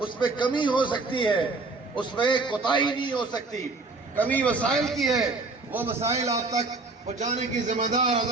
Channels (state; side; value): quieter; left; 3.6 dB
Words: میں کمی ہو سکتی ہے، اس میں کوتاہی نہیں ہو سکتی، کمی وسائل کی ہے، وہ مسائل آپ تک پہنچانے کی ذمہ دار